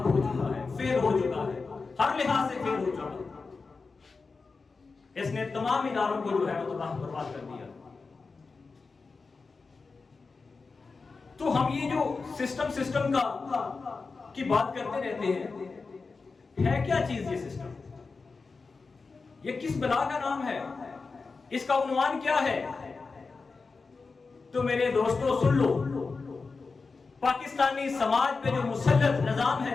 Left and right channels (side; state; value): right; quieter; 4.3 dB